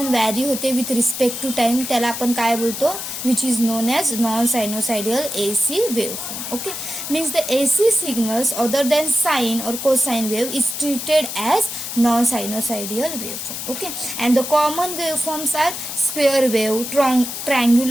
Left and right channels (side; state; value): left; noise; hiss, 6 dB below the sound